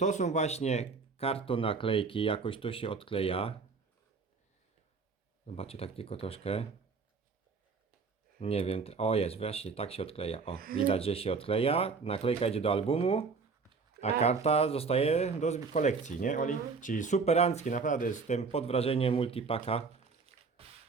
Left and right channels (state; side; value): quieter; left; 4.7 dB